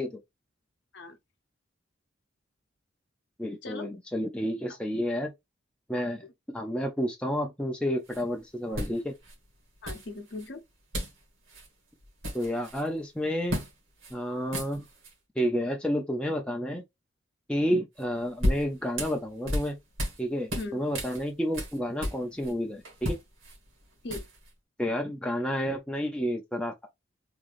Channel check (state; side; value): normal; both; correlation 0.80